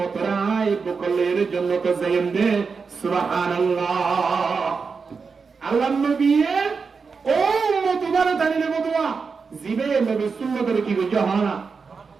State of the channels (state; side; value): quieter; left; 5.1 dB